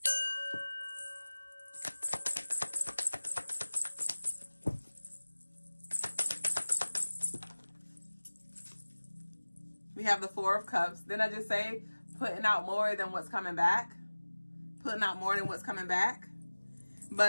We have the Four of Cups. Didn't I just say putting out more than what's coming back? Putting out more than what's coming back.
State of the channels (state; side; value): inverted; both; correlation -1.00